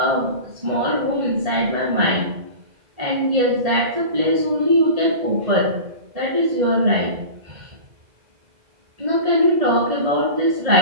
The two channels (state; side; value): late; left; 2.0 ms